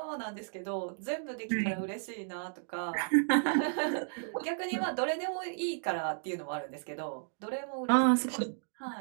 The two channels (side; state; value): left; silent; digital silence